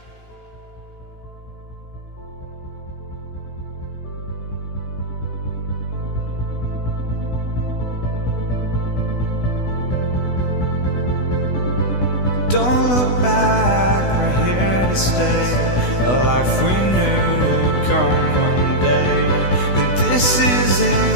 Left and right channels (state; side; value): late; right; 16 ms